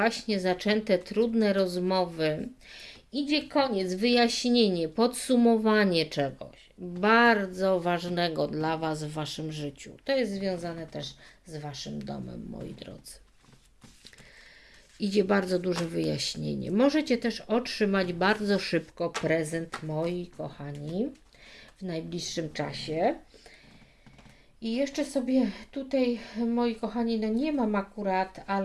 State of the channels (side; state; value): both; identical; correlation 1.00